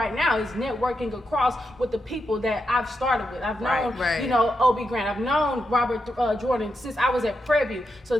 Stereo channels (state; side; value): normal; both; correlation 0.85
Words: now is networking across with the people that I've started with. I've known, Obi Grant. I've known Robert Jordan since I was at Prairie View. So